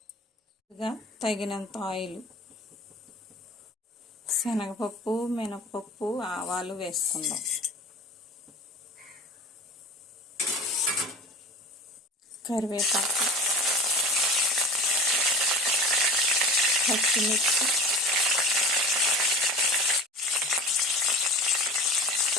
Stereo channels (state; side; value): normal; both; correlation 0.38